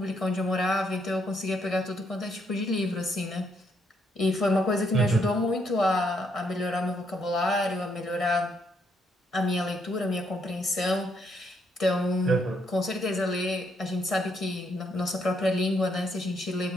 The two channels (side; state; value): both; normal; correlation 0.74